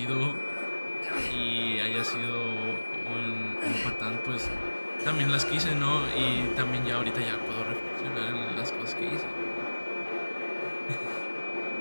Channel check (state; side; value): inverted; both; correlation -1.00